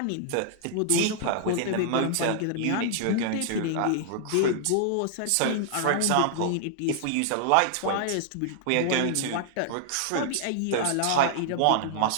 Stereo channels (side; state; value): both; different; correlation -0.01